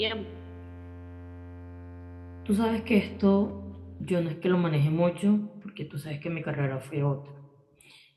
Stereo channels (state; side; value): identical; both; correlation 1.00